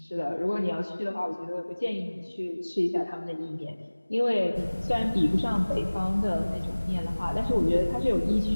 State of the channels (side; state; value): both; inverted; correlation -1.00